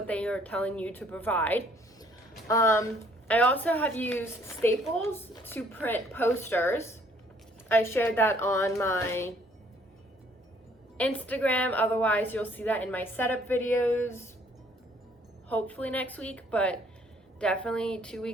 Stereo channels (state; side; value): normal; both; correlation 0.61